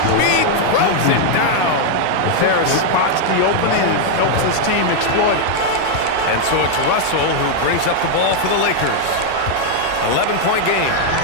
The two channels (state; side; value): different; both; correlation 0.00